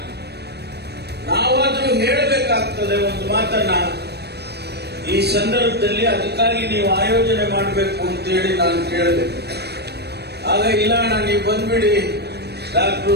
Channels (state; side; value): late; left; 0.48 ms